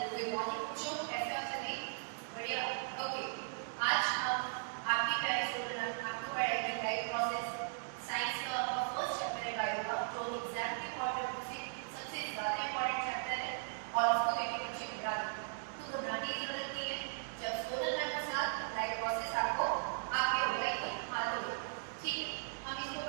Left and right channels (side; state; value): left; silent; digital silence